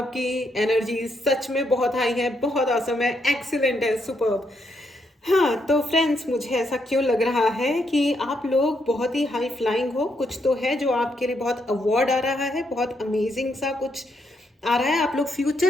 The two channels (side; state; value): both; normal; correlation 0.77